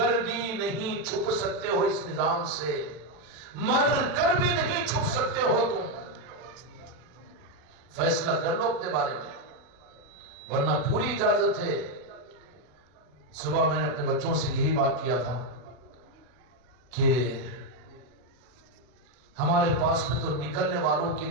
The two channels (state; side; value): late; left; 40 ms